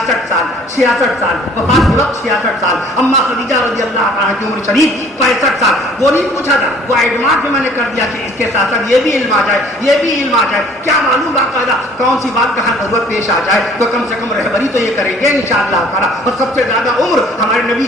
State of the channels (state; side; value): normal; both; correlation 0.55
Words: سال وفات کے وقت 66 سال. اما خدیجہ رضی اللہ عنہا کی عمر شریف 65 سال. وہ نہیں پوچھا تھا، وہ ایڈوانس میں نے کر دیا کہ اس کے ساتھ ساتھ یہ بھی علم آ جائے، یہ بھی علم آ جائے. کیا معلوم باقاعدہ کون سی بات کہاں ضرورت پیش آ جائے تو کم سے کم رہبری تو یہ کریں گے انشاءاللہ تعالیٰ. اور سب سے زیادہ عمر ہمارے نبی